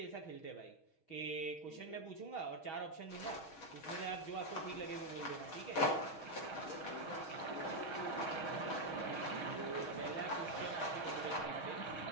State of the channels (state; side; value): late; right; 6.3 ms